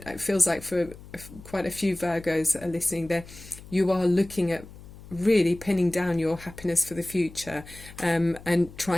it feels like for quite a few Virgos that are listening there, you are looking at really pinning down your happiness for the future, and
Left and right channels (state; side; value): noise; left; hum, 18 dB below the sound